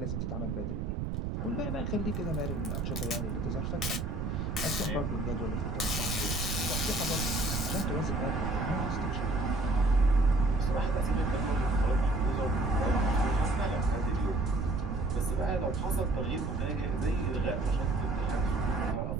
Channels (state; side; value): noise; right; rumble, 2 dB below the sound